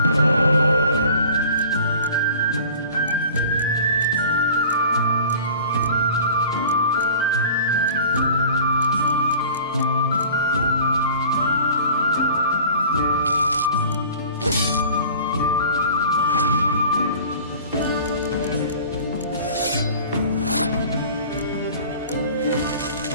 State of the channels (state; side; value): inverted; both; correlation -0.44